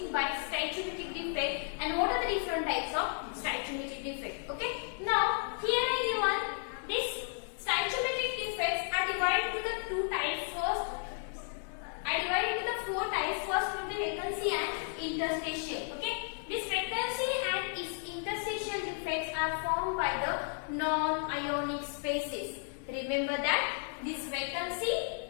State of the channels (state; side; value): silent; right; 55 dB below the other